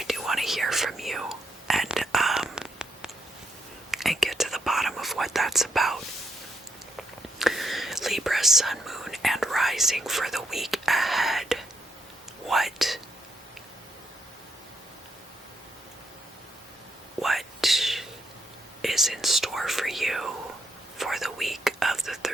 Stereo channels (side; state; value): both; normal; correlation 0.78